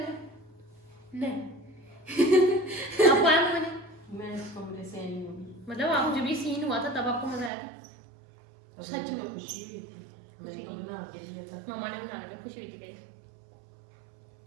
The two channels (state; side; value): drops out; left; at 7.5 s